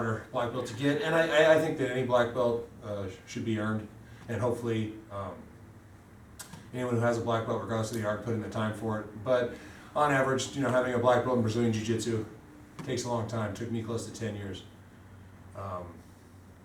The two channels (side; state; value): both; identical; correlation 1.00